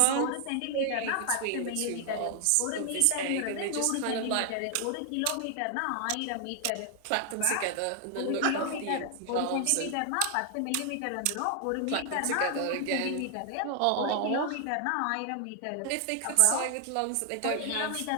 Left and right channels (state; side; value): different; both; correlation 0.00